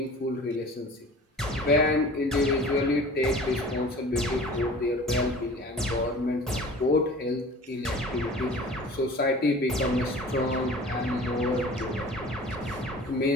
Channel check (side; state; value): both; normal; correlation 0.43